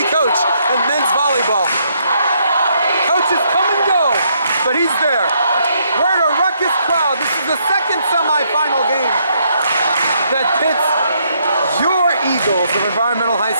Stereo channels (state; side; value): inverted; both; correlation -0.72